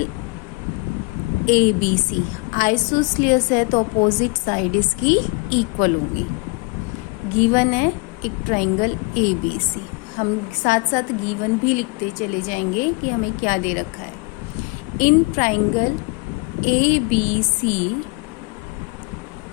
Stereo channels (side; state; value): right; quieter; 27.5 dB